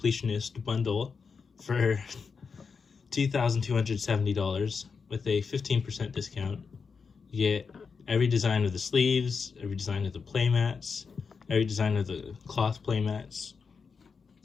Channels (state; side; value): quieter; right; 5.4 dB